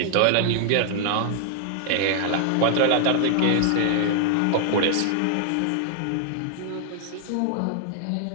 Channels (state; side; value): different; both; correlation 0.00